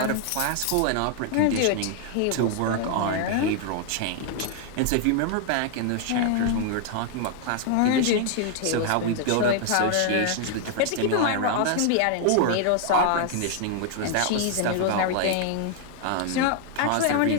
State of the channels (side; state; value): both; different; correlation 0.00